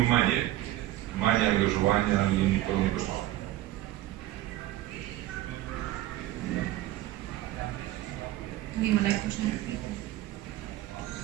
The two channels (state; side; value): quieter; left; 15.1 dB